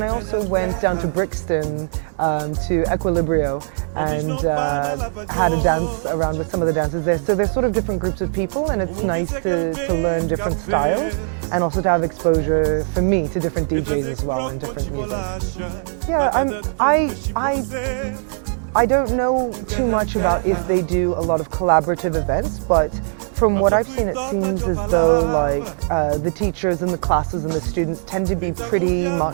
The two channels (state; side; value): silent; left; digital silence